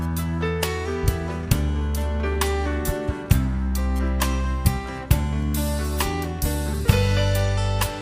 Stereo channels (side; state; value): both; identical; correlation 1.00